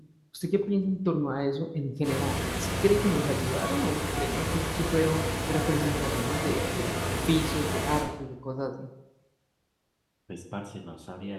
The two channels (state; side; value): identical; both; correlation 1.00